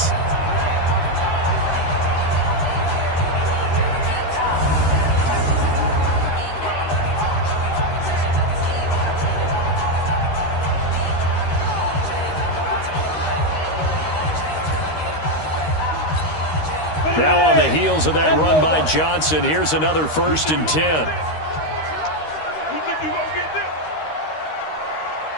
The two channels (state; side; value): late; right; 13 ms